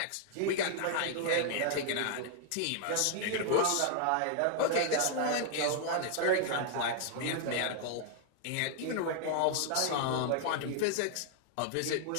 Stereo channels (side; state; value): both; different; correlation 0.00